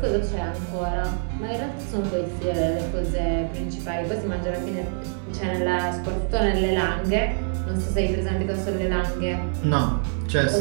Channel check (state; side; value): silent; left; digital silence